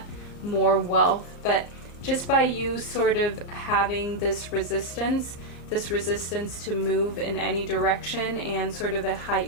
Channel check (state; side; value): late; right; 34 ms